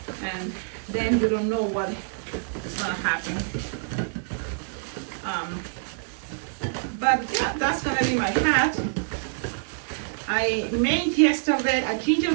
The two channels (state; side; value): silent; left; 61 dB below the other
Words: And then you don't know what is going to happen. But yeah, that's going to be my hat. I made yesterday a